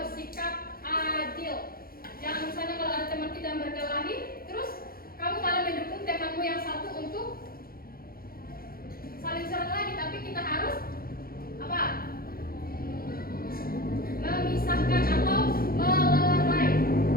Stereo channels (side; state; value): right; late; 0.43 ms